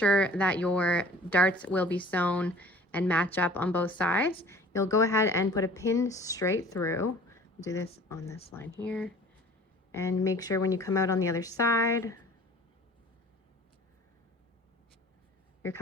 that your darts will be sewn and match up on both sides, you'll go ahead and put a pin straight through. Do this on this line here. And make sure when you come out on the other side, you're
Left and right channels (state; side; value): normal; both; correlation 0.47